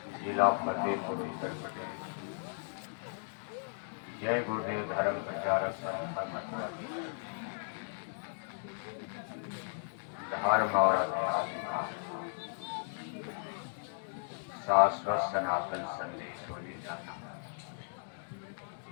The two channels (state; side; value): silent; right; digital silence